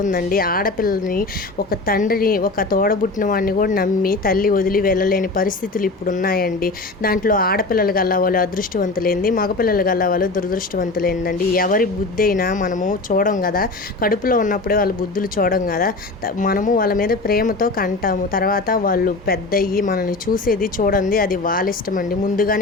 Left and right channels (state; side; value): quieter; right; 3.3 dB